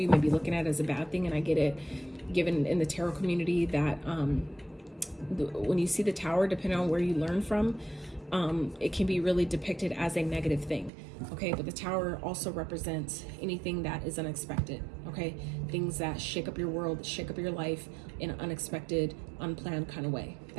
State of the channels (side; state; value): left; drops out; at 10.9 s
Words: may be looking at it as a bad thing, and I get it, given in the tarot community that when you see the tower, depending on where you learn from, it can be really depicted as a negative thing, okay? But the tower also represents anything that is unexpected, okay? Things that shake up your world, shake up your life in an unexpected, unplanned kind of way.